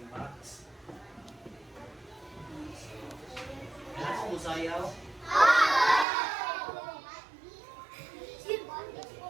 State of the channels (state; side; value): drops out; left; at 6.1 s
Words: Max. Kailan mo musayaw?